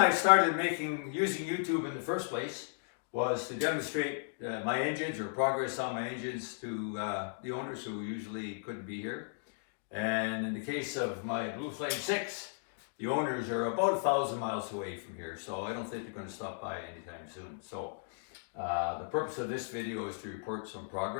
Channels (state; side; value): silent; right; digital silence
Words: started using YouTube in the first place was to demonstrate my engines or progress on my engines to the owners who usually couldn't be here. And in the case of my Blue Flame 6, the owners are about 1,000 miles away from here, so I don't think they're going to stop by anytime soon. So the purpose of this video is to report some